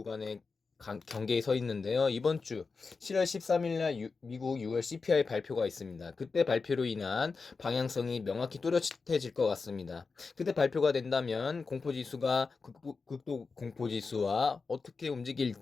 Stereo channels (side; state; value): right; quieter; 4.5 dB